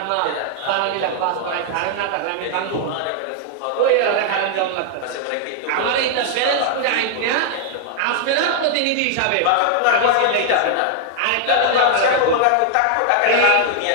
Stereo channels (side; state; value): both; different; correlation -0.01